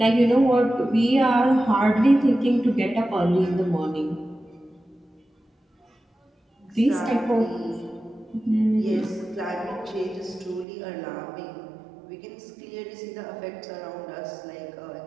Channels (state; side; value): drops out; left; at 10.7 s